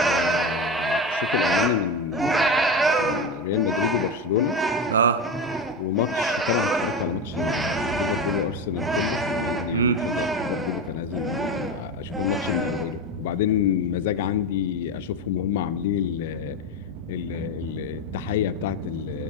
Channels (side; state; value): both; normal; correlation 0.19